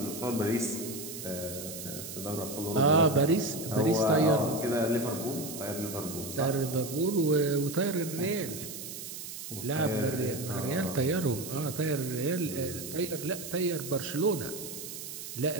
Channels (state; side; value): noise; right; hiss, 9 dB below the sound